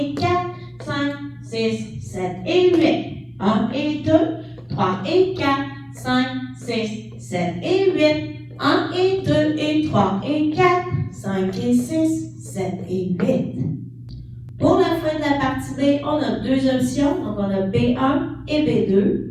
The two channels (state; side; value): identical; both; correlation 1.00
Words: 4, 5, 6, 7 et 8. 1 et 2, 3 et 4, 5, 6, 7 et 8. 1 et 2 et 3 et 4, 5 et 6, 7 et 8. Pour la fin de la partie B, on a deux options. Donc, on a B1 et